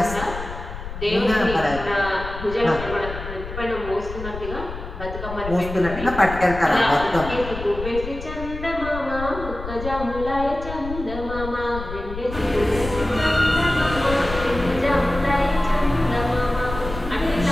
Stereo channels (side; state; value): left; noise; rumble, 9 dB below the sound